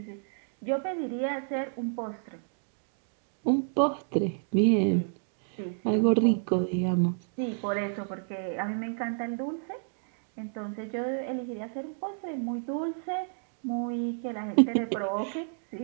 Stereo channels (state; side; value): silent; left; digital silence